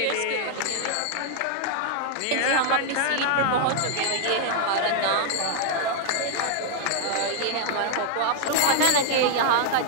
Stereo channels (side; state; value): both; different; correlation 0.00